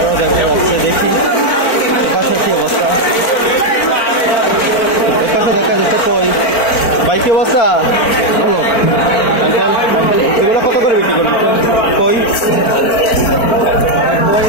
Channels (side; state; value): right; late; 4.4 ms